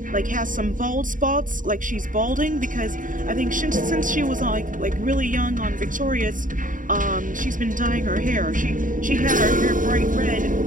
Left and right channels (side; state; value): left; late; 0.38 ms